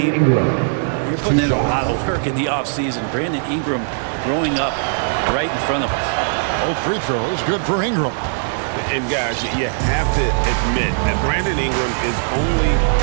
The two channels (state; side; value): silent; left; digital silence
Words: you're putting in a lot of work in the offseason. Brandon Ingram growing up right in front of us. Both free throws, good for Ingram. And guys, you have to admit that Brandon Ingram is only